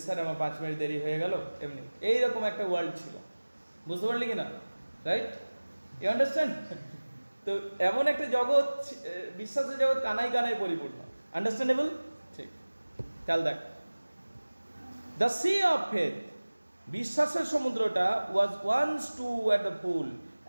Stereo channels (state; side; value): inverted; both; correlation -1.00